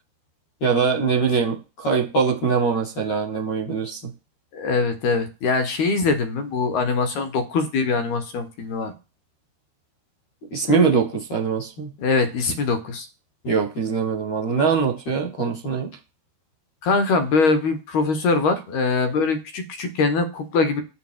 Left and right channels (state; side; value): late; right; 13 ms